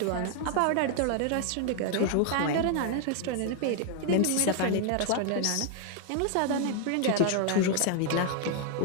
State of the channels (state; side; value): different; both; correlation 0.00